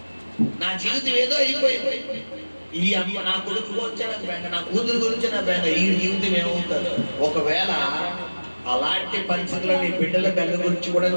నా జీవితం ఏదో అయిపోయింది, ఈ అమ్మ నా కొడుకు గురించే నాకు బెంగ, నా కూతురు గురించి నా బెంగ, ఈ జీవితం ఏమవుతుంది? ఒకవేళ అలాంటి పరిస్థితుల్లో నీ బిడ్డల బెంగ గురించి కూడా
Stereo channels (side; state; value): both; inverted; correlation -1.00